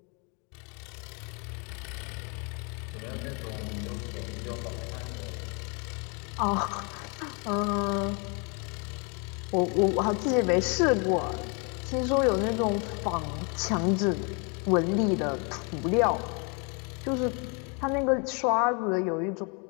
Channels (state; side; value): quieter; right; 34.4 dB